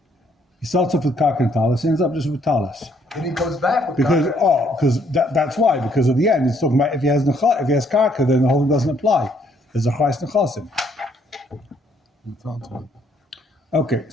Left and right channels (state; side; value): normal; both; correlation 0.67